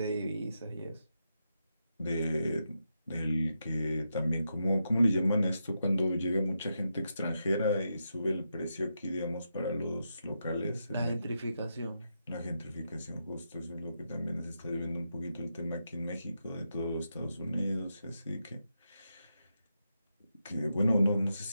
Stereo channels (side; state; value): both; inverted; correlation -0.85